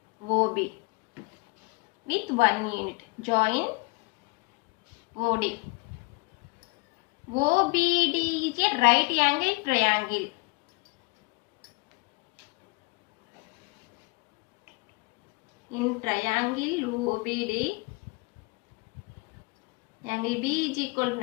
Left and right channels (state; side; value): quieter; right; 26.4 dB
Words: OB with 1 unit. Join OD. OBD is a right angle triangle. In triangle OBD, angle B is equal to